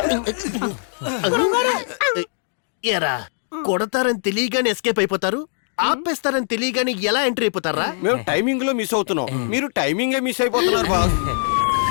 ఎరా, కొడతారని తెలియగానే ఎస్కేప్ అయిపోతారు, ఆపేస్తారని తెలియగానే ఎలా ఎంట్రీ అయిపోతారా? మేము టైమింగ్ లో మిస్ అవుతున్నాం, మీరు టైమింగే మిస్ అయిపోతున్నారు బాస్.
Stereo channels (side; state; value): right; silent; digital silence